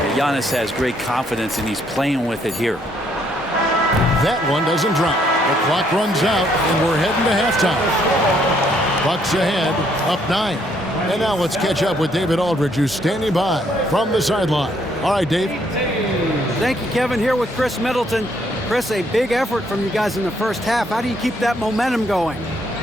Giannis has great confidence, and he's playing with it here. That one doesn't drop. The clock runs out, and we're heading to halftime. Bucks ahead, up 9. And now let's catch up with David Aldridge, who's standing by from the sideline. All right, Dave. Thank you, Kevin. Here with Chris Middleton. Chris, a big effort from you guys in the first half. How do you keep that momentum going?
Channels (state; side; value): normal; both; correlation 0.69